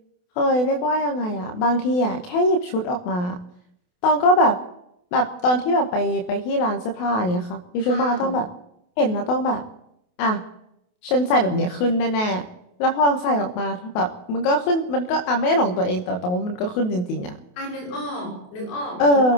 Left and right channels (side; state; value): right; late; 28 ms